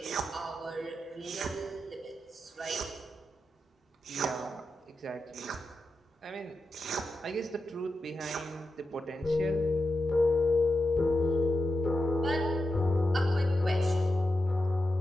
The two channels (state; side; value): normal; both; correlation 0.89